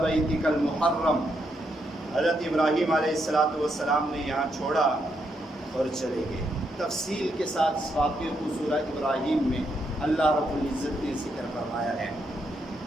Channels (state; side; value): normal; both; correlation 0.79